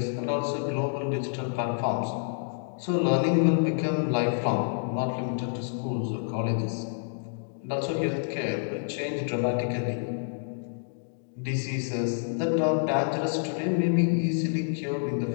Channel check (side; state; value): right; silent; digital silence